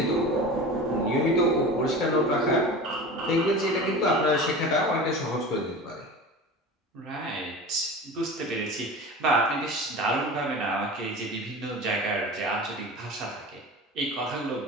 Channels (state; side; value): normal; both; correlation 0.33